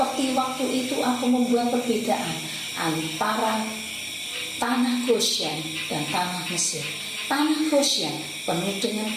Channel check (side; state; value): both; identical; correlation 1.00